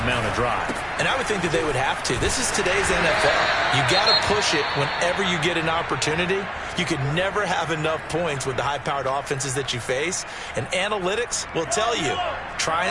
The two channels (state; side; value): identical; both; correlation 1.00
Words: mount a drive. And I would think that they would have to. This is today's NFL. You got to push it whenever you get an opportunity. You could never have enough points with the high-powered offenses that you face. And analytics will tell you, try